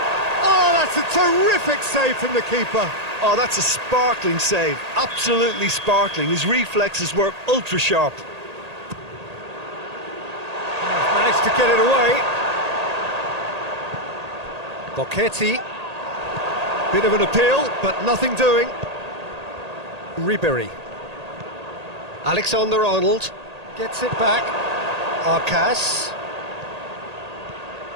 Oh, that's a terrific save from the keeper. Oh, that's a sparkling save. Absolutely sparkling. His reflexes were ultra sharp. Managed to get it away. Bocchetti. Bit of an appeal, but nothing doing. Ribery. Alexander-Arnold gets it back. Arcas.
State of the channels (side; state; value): left; late; 1.8 ms